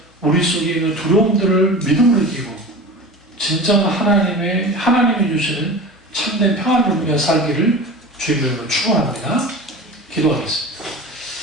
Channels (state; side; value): normal; both; correlation 0.34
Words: 우리 속에 있는 두려움들을 믿음으로 이기고 진정 하나님이 주시는 참된 평안을 누리며 살기를 주님으로 축원합니다. 기도하겠습니다.